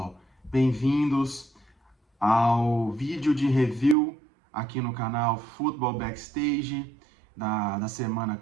bem-vindos ao vídeo de review aqui no canal Football Backstage da semana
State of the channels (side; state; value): left; drops out; at 4.0 s